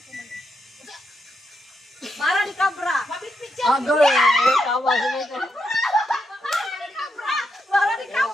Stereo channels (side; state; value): both; normal; correlation 0.82